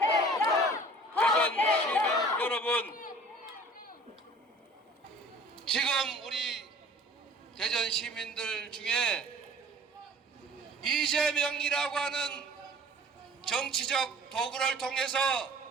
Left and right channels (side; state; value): both; normal; correlation 0.49